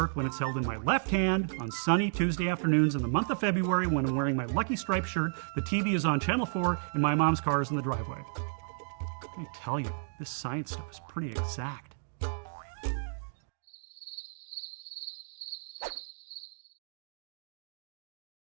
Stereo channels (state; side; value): silent; left; digital silence